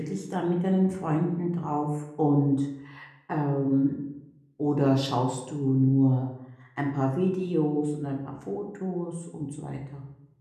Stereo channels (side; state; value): both; identical; correlation 1.00